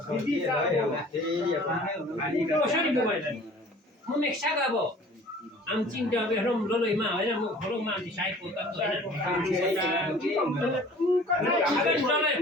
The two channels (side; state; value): both; normal; correlation 0.48